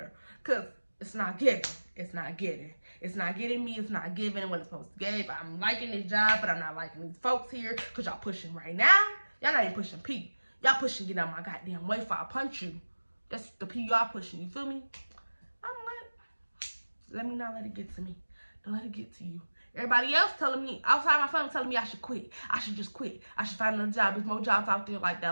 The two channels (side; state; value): both; inverted; correlation -1.00